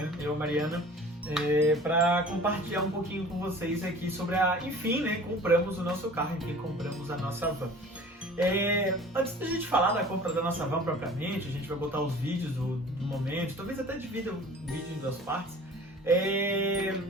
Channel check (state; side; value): normal; both; correlation 0.45